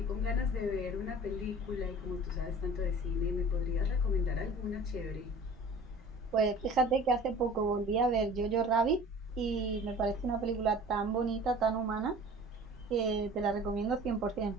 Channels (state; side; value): normal; both; correlation 0.44